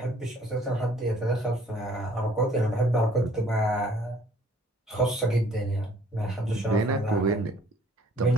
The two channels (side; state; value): both; normal; correlation 0.58